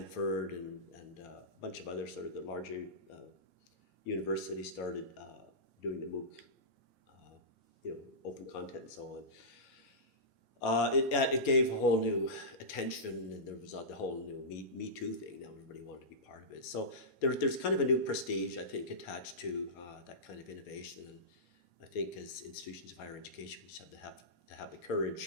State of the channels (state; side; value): normal; both; correlation -0.18